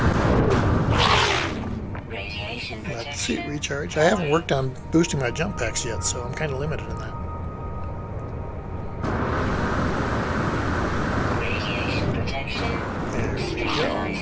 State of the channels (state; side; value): identical; both; correlation 1.00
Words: Let's see, recharge. I haven't worked on boosting my jump packs yet, so I'm kind of limited in that. There we go.